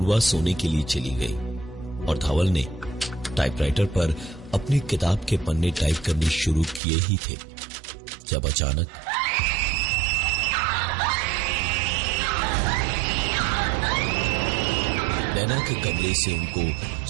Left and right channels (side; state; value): left; drops out; at 6.8 s